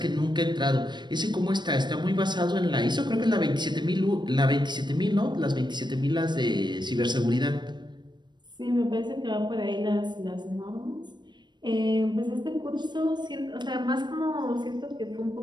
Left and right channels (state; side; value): late; left; 0.22 ms